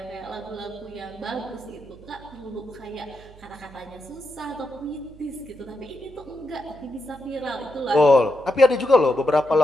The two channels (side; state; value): right; noise; hum, 21 dB below the sound